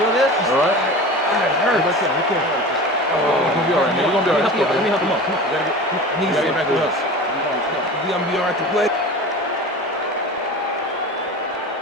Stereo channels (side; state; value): both; normal; correlation 0.34